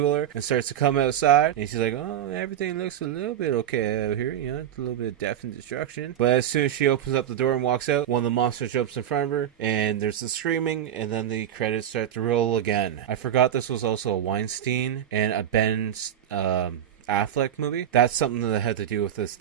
and starts to come outside, and she's like, oh, everything looks a little bit okay out here, it's a little bit of death and destruction. But as soon as she opens up the door and walks out, one of the monsters jumps in front of her, and there's the screaming, and then the credits start to roll again. I forgot this was also a Weinstein and a Ben Affleck movie. That's something that had to do with this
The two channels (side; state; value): left; quieter; 10.3 dB